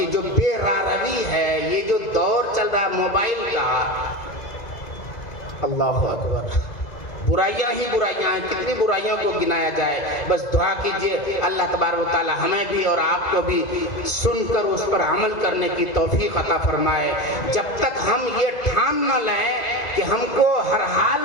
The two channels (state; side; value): late; right; 2.0 ms